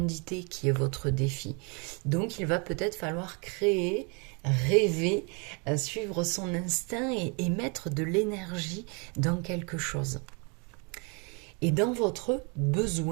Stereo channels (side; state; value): left; quieter; 33.6 dB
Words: qui est votre défi. Donc il va peut-être falloir créer, rêver, suivre son instinct et mettre de l'énergie dans quelque chose. Et dans votre